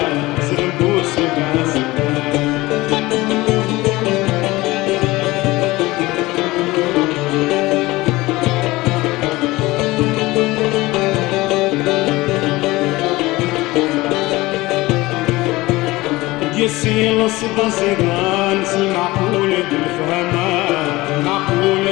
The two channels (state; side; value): quieter; right; 20.0 dB